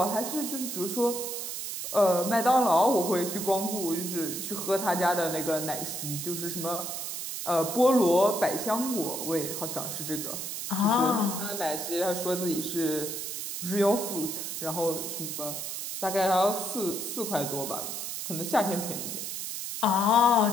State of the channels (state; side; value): noise; right; hiss, 5 dB below the sound